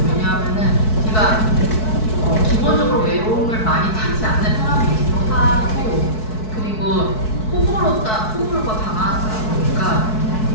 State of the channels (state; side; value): late; right; 4.6 ms